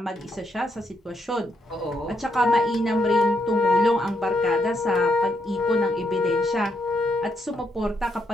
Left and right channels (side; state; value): both; normal; correlation 0.78